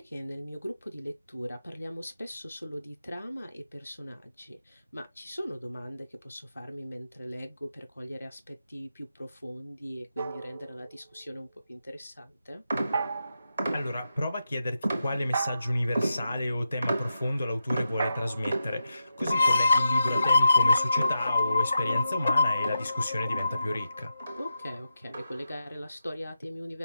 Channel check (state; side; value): inverted; both; correlation -0.88